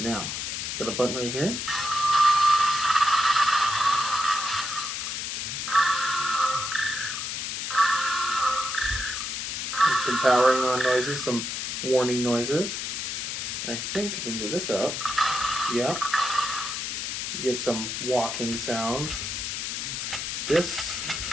got a button right here. Some powering on noises, some warning noises. And I think if we move this up, yeah, get some walking sounds. This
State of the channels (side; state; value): left; noise; hiss, 3 dB below the sound